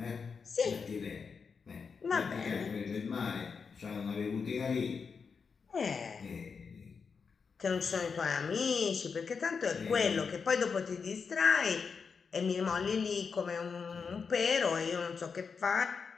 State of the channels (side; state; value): right; quieter; 5.6 dB